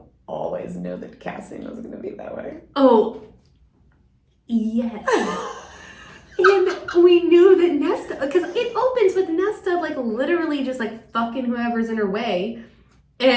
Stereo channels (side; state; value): both; identical; correlation 1.00